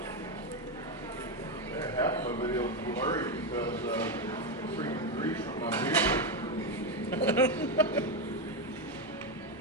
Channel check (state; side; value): normal; both; correlation 0.08